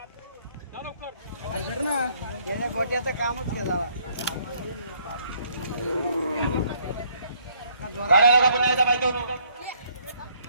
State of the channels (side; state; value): both; inverted; correlation -0.65